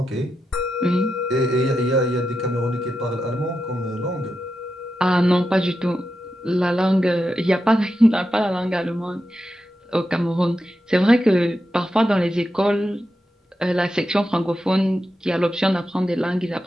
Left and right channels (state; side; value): normal; both; correlation 0.88